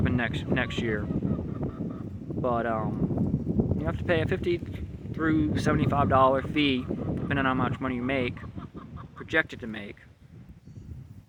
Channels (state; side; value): identical; both; correlation 1.00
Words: next year. But you have to pay a $50 through $75 fee, depending on how much money you make, projected to make.